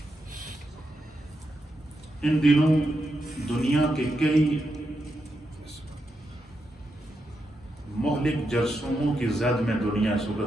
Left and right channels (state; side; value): normal; both; correlation 0.85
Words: ان دنوں دنیا کے کئی مہلک جرثوموں کی زد میں دنیا اس